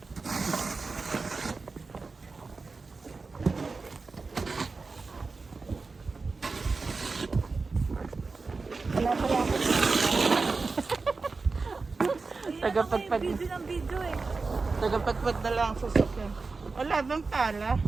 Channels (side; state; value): left; quieter; 4.1 dB